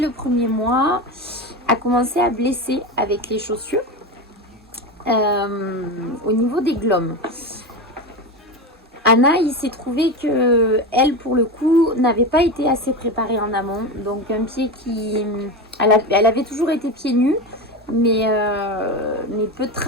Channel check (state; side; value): normal; both; correlation 0.20